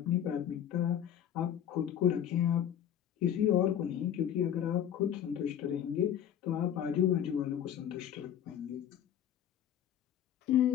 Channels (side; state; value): right; quieter; 10.0 dB